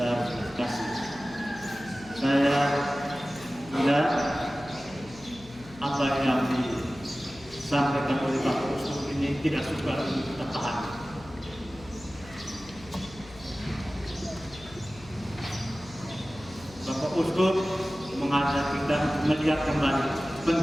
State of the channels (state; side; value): noise; left; hum, 20 dB below the sound